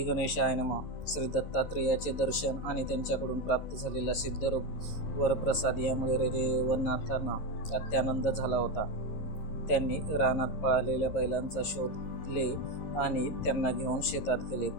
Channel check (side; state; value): right; late; 11 ms